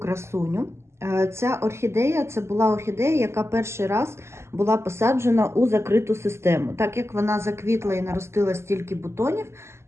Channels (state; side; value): late; left; 0.13 ms